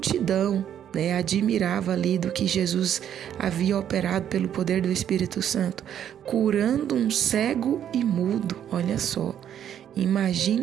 admirava ali do que Jesus havia operado pelo poder do Espírito Santo, curando um cego e mudo. Olha só,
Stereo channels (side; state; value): left; quieter; 9.8 dB